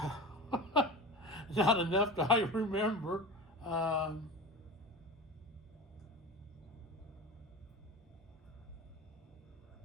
Not enough that I remember. I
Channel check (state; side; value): normal; both; correlation 0.30